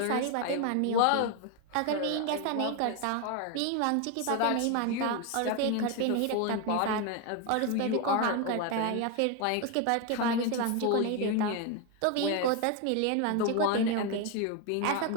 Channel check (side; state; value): both; different; correlation 0.01